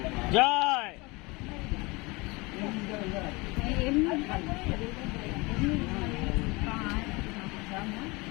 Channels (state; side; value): quieter; right; 25.1 dB